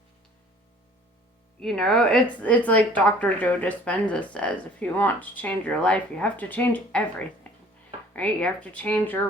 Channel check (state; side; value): normal; both; correlation 0.52